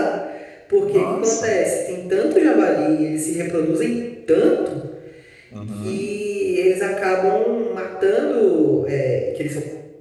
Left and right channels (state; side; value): identical; both; correlation 1.00